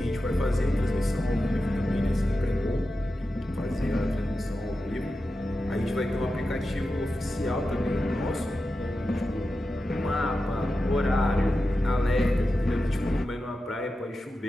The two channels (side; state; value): both; normal; correlation 0.91